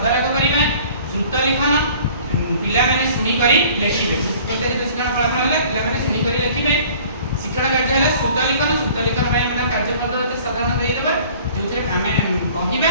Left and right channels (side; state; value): both; inverted; correlation -0.50